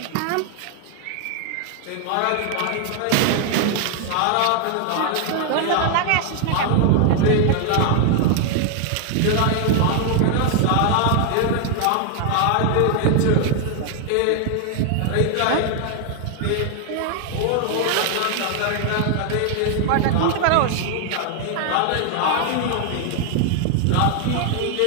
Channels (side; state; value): both; different; correlation 0.00